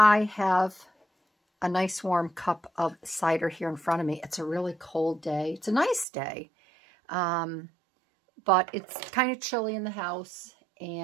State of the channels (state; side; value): drops out; left; at 6.1 s